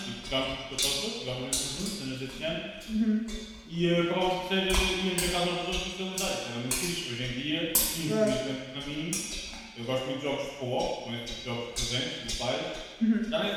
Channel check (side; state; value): both; identical; correlation 1.00